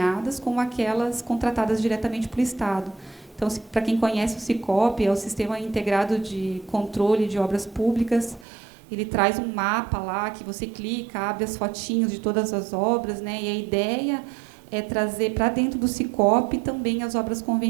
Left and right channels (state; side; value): drops out; left; at 8.5 s